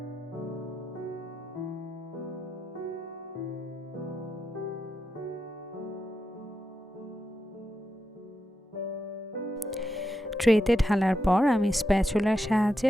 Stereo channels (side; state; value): both; normal; correlation 0.86